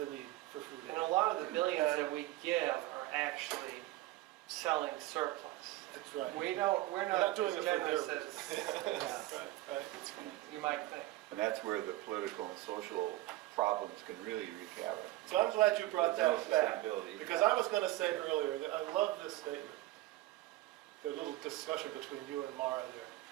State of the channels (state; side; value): quieter; left; 17.2 dB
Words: need for food aid. And a lot of the billions that we give are actually selling surplus. That's right. We're not doing as it for generous their as Right. you might think. And that's where the political and social problems can really wreak havoc. So I'm glad you brought that back, Sustainability. because I was going to say earlier that I love this statement. The little discussion between you and Mara there.